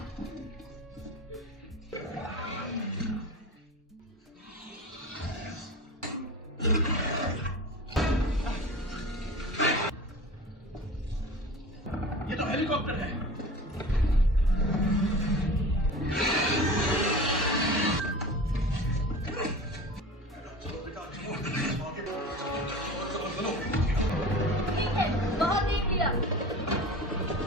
ये तो हेलीकॉप्टर है। बहुत देख लिया।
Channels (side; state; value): both; normal; correlation 0.35